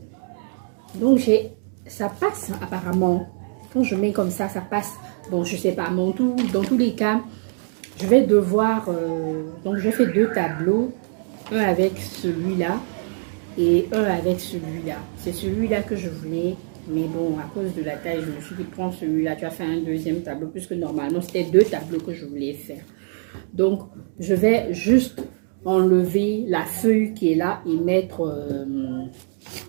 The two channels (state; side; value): silent; left; digital silence